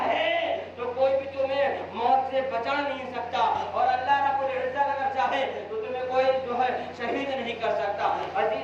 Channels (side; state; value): both; identical; correlation 1.00